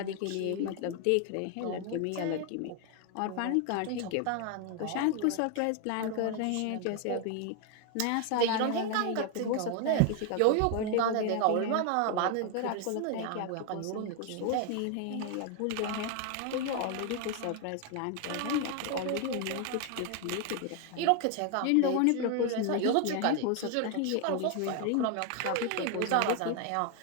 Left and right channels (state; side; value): different; both; correlation 0.00